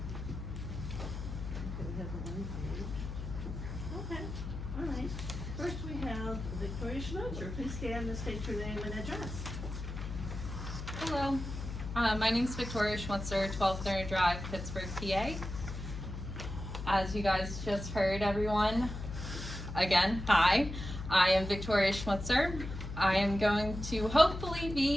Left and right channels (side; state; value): left; noise; hum, 7 dB below the sound